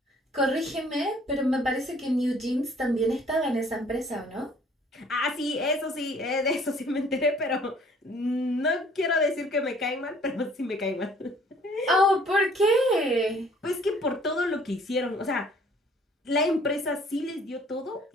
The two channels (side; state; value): both; normal; correlation 0.57